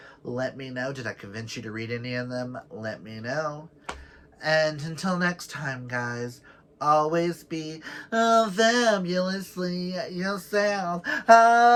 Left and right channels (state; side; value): identical; both; correlation 1.00